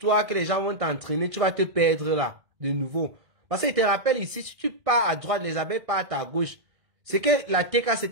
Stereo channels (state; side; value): late; left; 1.5 ms